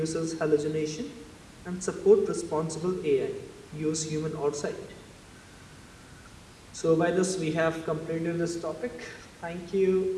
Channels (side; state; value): both; identical; correlation 1.00